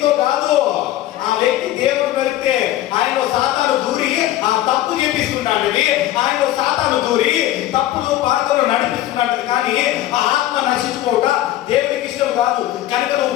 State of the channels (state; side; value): quieter; right; 14.2 dB